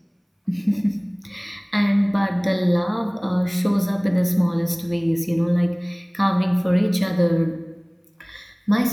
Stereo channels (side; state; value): both; identical; correlation 1.00